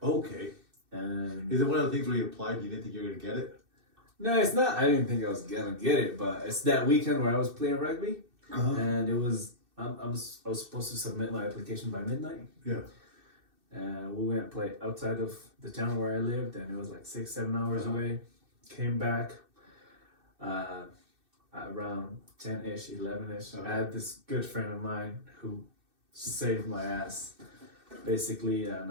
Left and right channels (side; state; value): left; late; 2.6 ms